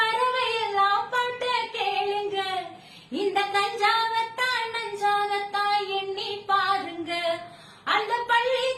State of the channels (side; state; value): both; identical; correlation 1.00